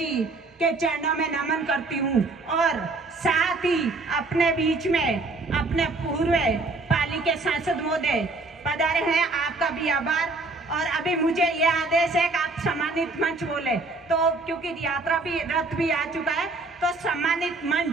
के चरणों में नमन करती हूँ और साथ ही अपने बीच में अपने पूर्व पाली के सांसद महोदय पधारे हैं, आपका भी आभार। और अभी मुझे ये आदेश है कि आप सम्मानित मंच बोले, तो क्योंकि यात्रा भी रथ भी आ चुका है, तो सम्मानित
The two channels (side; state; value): left; quieter; 3.3 dB